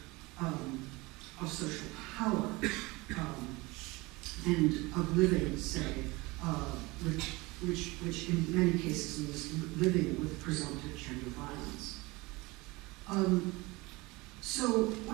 social power and of living, say, which in many cases means living with presumptive gender violence. So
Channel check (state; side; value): quieter; left; 23.1 dB